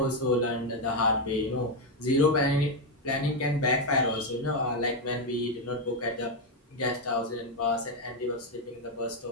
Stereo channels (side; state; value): both; normal; correlation 0.04